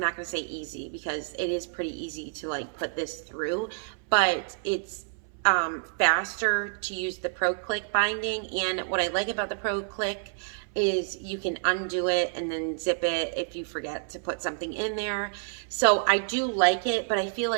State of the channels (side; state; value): left; silent; 59 dB below the other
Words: going to say easy because it is pretty easy to like put this through, but it's faster to use the Pro Click binding. And what I like about the Pro Click is you can undo it and then zip it if you forget to put something in there. So I do like it, but I feel